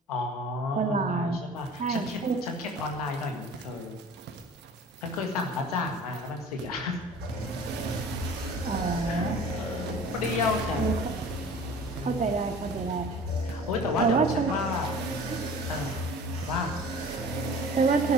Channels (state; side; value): normal; both; correlation 0.43